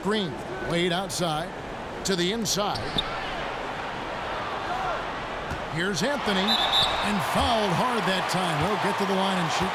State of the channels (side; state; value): both; identical; correlation 1.00